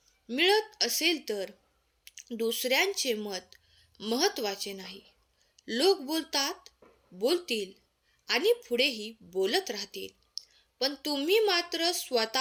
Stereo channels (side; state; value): both; identical; correlation 1.00